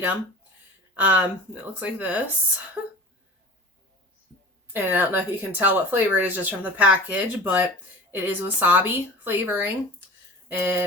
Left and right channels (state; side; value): normal; both; correlation 0.38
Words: It looks like this. And I don't know if you can tell what flavor it is just from the package, but it is wasabi flavoring.